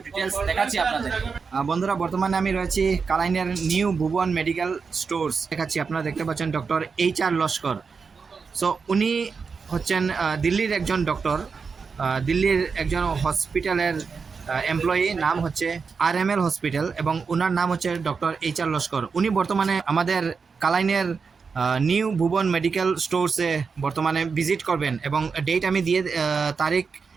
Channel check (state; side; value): quieter; left; 5.3 dB